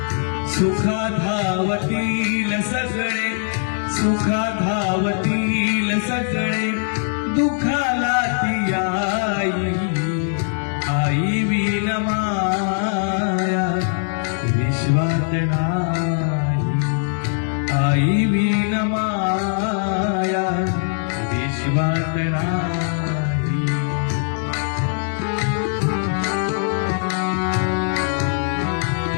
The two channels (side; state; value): right; silent; 65 dB below the other